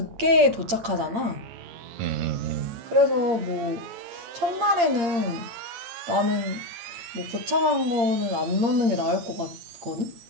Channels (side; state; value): left; late; 8.7 ms